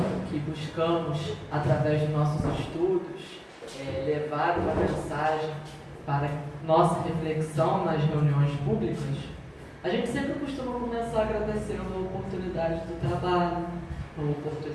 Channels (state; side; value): identical; both; correlation 1.00